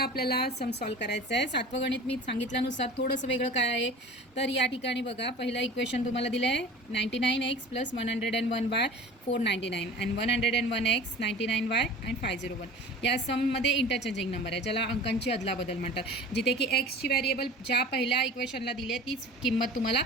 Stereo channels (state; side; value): normal; both; correlation 0.39